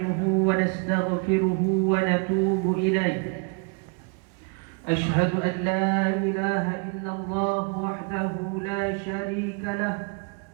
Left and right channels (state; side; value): quieter; left; 35.2 dB